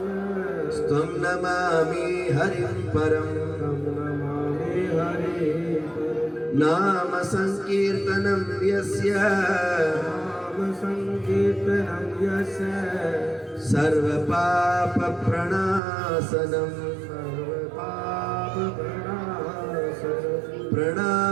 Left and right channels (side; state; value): left; drops out; at 15.8 s